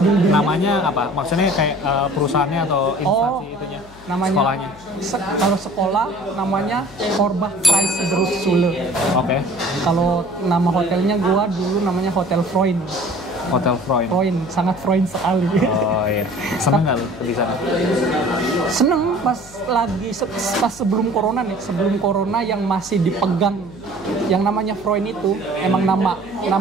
Namanya apa? Maksudnya kayak perusahaannya atau instansi itunya? Namanya, sekolahnya? Kalau sekolah namanya Korbach Preis Berufsschule. Oke. Kalau nama hotelnya gua dulu namanya Hotel Freund. Hotel Freund. Sangat Freund sekali. Oh iya. Seneng nggak lu di sana? Seneng pas sebelum corona yang masih dipegang yang namanya Freund itu, emang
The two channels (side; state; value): left; noise; hum, 22 dB below the sound